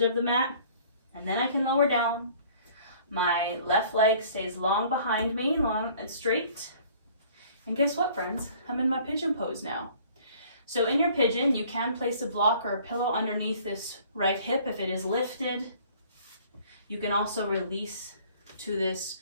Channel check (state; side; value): inverted; both; correlation -0.53